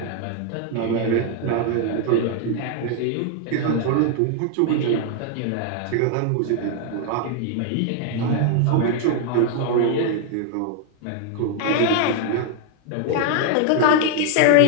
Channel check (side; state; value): both; different; correlation 0.00